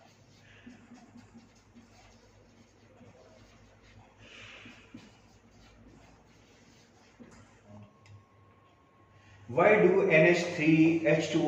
Why do NH3,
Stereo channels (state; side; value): identical; both; correlation 1.00